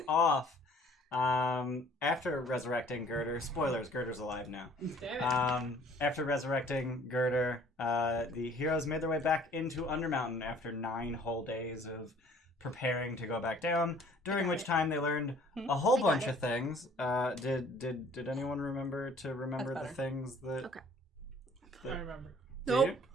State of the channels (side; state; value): both; normal; correlation 0.55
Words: off, after resurrecting Girder, spoilers, Girder's alive now. After resurrecting Girder, the heroes made their way back into Undermountain after 9 whole days of preparing to go back down, during which time they learned a whole bunch of things. Did anyone remember the things that... Okay. I remember. Nope.